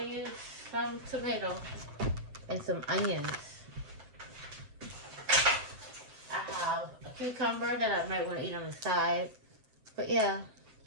to use some tomato and some onions. I have a cucumber that I might want to eat on the side, but yeah,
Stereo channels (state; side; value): late; left; 7.8 ms